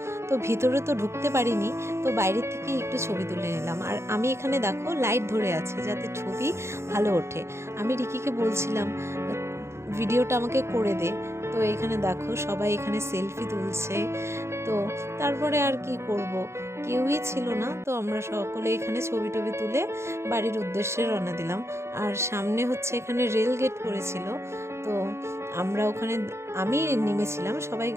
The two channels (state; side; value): late; left; 0.13 ms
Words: তো ভিতরে তো ঢুকতে পারিনি, তো বাইরের থেকে একটু ছবি তুলে নিলাম। আর আমি এখানে দেখো লাইট ধরে আছে যাতে ছবি ভালো ওঠে। আমি রিকিকে বলছিলাম ভিডিওটা আমাকে করে দে। তো এখানে দেখো সবাই এখানে সেলফি তুলছে। তো তারপরে আর কি করব, কেউই ছিল না, তো আমরা সকলে এখানে ছবি টবি তুলে বাড়ির উদ্দেশ্যে রওনা দিলাম। আর সামনে হচ্ছে এখানে রেল গেট পড়েছিল, তো আমরা ওখানে আমি নেমেছিলাম, সবাই